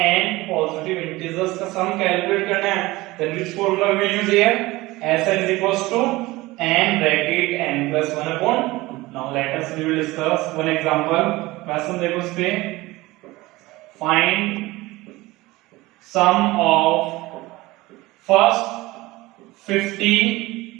n positive integers का sum calculate करना है, then which formula we will use here? Sn is equals to n bracket n plus 1 upon 2. Now let us we will discuss one example. Question देखो इस पे. Find sum of first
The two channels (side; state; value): left; quieter; 20.0 dB